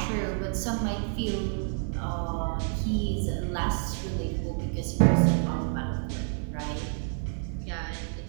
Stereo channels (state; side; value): silent; left; 55 dB below the other